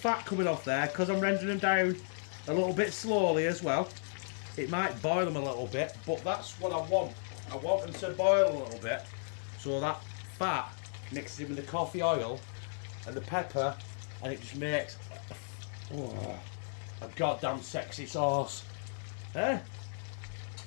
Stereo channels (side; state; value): right; silent; digital silence